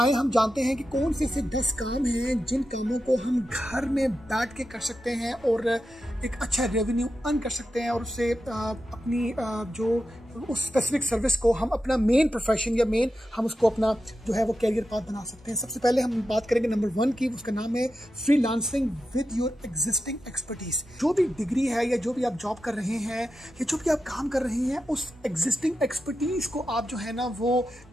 हम जानते हैं कि कौन से ऐसे 10 काम हैं जिन कामों को हम घर में बैठ के कर सकते हैं और एक अच्छा रेवेन्यू अर्न कर सकते हैं और उससे अपनी जो उस स्पेसिफिक सर्विस को हम अपना मेन प्रोफेशन या मेन हम उसको अपना जो है वो कैरियर पाथ बना सकते हैं। सबसे पहले हम बात करेंगे नंबर 1 की, उसका नाम है freelancing with your existing expertise. जो भी डिग्री है या जो भी आप जॉब कर रहे हैं या जो भी आप काम कर रहे हैं, उस एग्जिस्टिंग एक्सपर्टीज को आप जो है ना वो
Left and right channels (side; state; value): both; normal; correlation 0.90